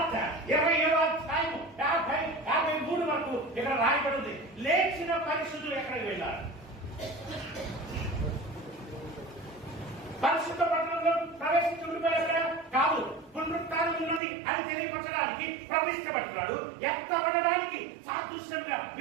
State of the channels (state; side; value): drops out; left; at 14.2 s